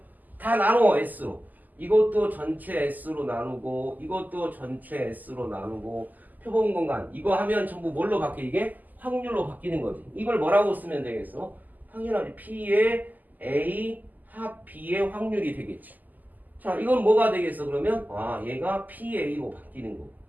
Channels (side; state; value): left; late; 0.083 ms